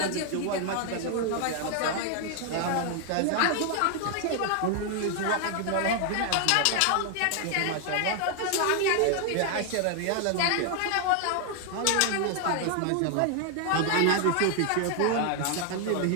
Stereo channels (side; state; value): both; different; correlation 0.00